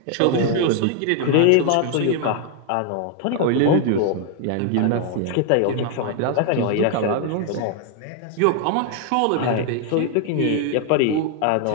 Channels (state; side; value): different; both; correlation 0.00